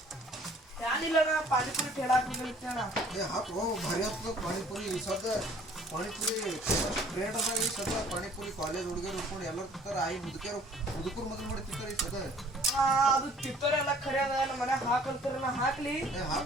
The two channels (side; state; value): both; normal; correlation 0.55